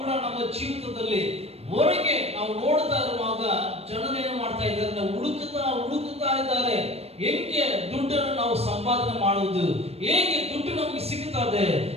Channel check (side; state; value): left; late; 0.30 ms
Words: ನಮ್ಮ ಜೀವಿತದಲ್ಲಿ ಹೊರಗೆ ನಾವು ನೋಡ್ತಾ ಇರುವಾಗ ಜನರೇನು ಮಾಡ್ತಾ ಇದ್ದಾರೆ? ನಾವು ಹುಡುಕುತ್ತಾ ಇದ್ದಾರೆ. ಹೇಗೆ ದುಡ್ಡನ್ನು ನಾವು ಸಂಪಾದನೆ ಮಾಡುವುದು, ಹೇಗೆ ದುಡ್ಡು ನಮಗೆ ಸಿಗುತ್ತದೆ,